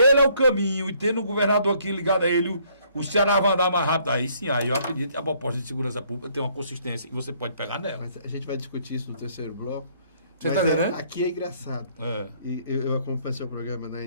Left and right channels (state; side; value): inverted; both; correlation -0.65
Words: é o caminho, e tendo um governador aqui ligado a ele, o Ceará vai andar mais rápido. Aí sim, aí eu acredito que a proposta de segurança pública tem uma consistência e você pode pegar nela. Mas a gente vai discutir isso no terceiro bloco. Você está entendendo? Aqui é engraçado. E eu acompanho seu programa na